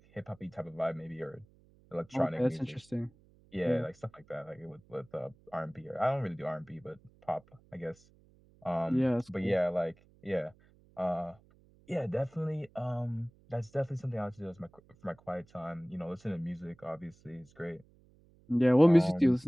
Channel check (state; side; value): noise; right; hum, 29 dB below the sound